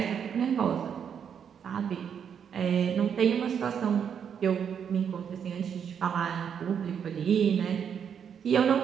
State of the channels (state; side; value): quieter; left; 7.7 dB